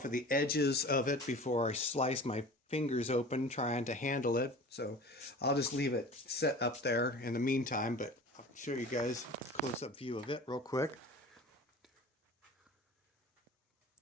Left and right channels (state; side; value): normal; both; correlation 0.40